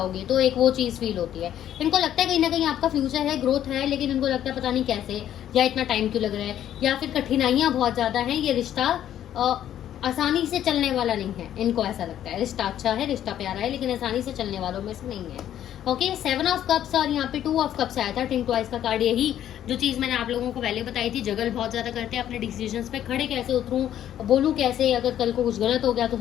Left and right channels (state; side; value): quieter; right; 11.1 dB